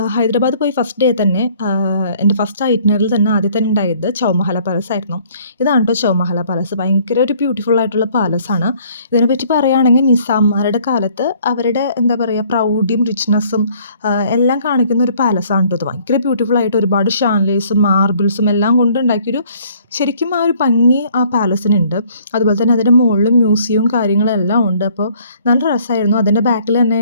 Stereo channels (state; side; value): inverted; both; correlation -0.59